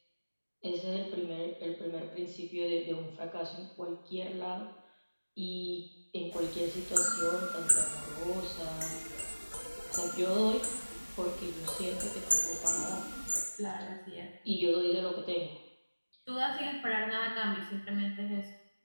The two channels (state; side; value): inverted; both; correlation -1.00